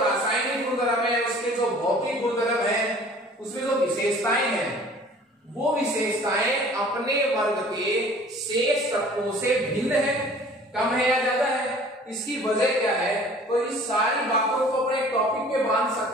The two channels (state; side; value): normal; both; correlation 0.49